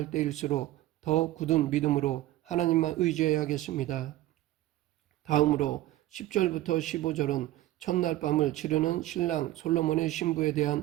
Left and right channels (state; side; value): quieter; left; 15.5 dB